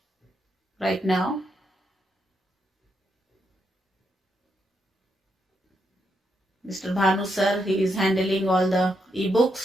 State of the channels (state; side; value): normal; both; correlation 0.80